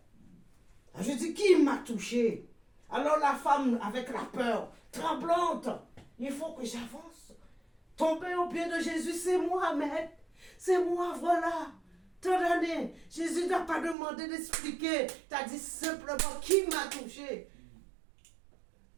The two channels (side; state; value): left; drops out; at 14.0 s